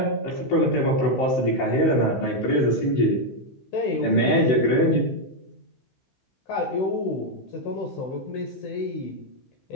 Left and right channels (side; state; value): right; late; 15 ms